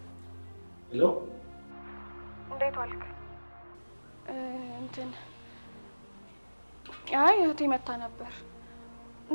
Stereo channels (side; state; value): both; inverted; correlation -1.00